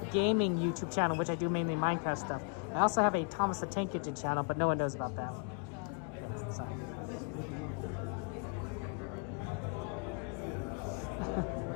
gaming YouTube channel, which I do mainly Minecraft stuff. I also have a Thomas the Tank Kitchen channel, but no one knows about that. So.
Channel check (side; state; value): right; quieter; 39.4 dB